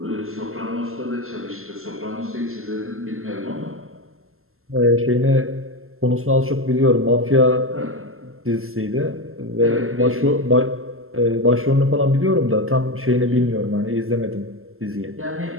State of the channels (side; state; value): left; late; 0.62 ms